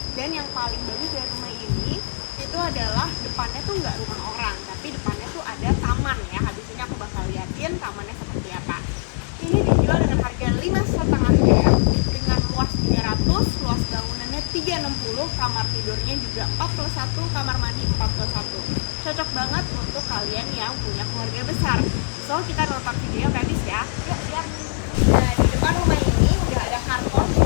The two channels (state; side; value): silent; right; digital silence